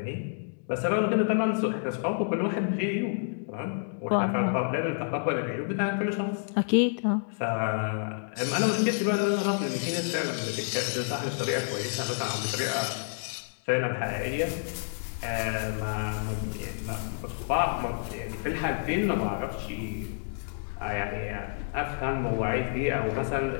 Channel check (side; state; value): right; silent; digital silence